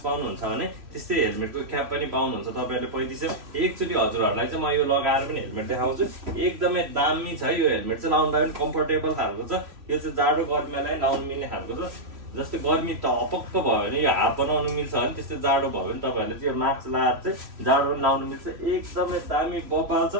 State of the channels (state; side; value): late; left; 3.0 ms